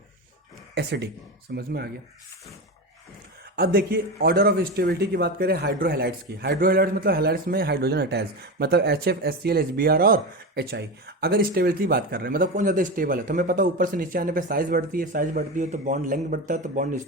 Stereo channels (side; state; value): both; normal; correlation 0.21